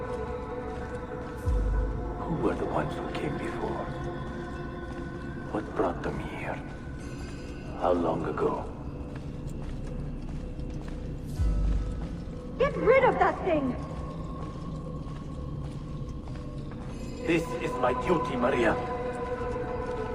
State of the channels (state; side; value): identical; both; correlation 1.00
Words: Who were the ones who came before? What brought them here? How long ago? Get rid of that thing! This is my duty, Maria.